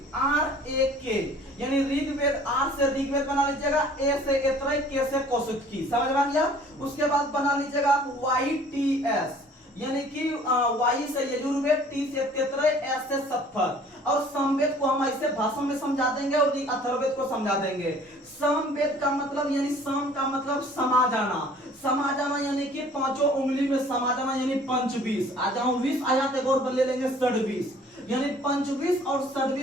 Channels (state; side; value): normal; both; correlation 0.53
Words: आर ए के, यानी ऋग्वेद, आर से ऋग्वेद बना लीजिएगा, ए से ऐतरेय, के से कौशिकी, समझ में आ गया। उसके बाद बना लीजिएगा आप वाई टी एस, यानी कि वाई से यजुर्वेद, टी से तैतरेय, एस से सत्तर, और समवेद को हम ऐसे भाषा में समझा देंगे और अथर्ववेद को समझा देंगे। समवेद का मतलब यानी सम का मतलब समा जाना, समा जाना यानी कि पांचों उंगली में समा जाना, यानी पंचबीस। आ जाओ 20 आ जाते एक और ले लेंगे षडवीस, यानी पंचवीस और